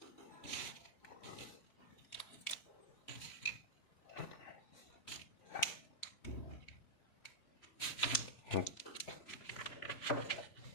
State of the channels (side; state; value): right; late; 3.5 ms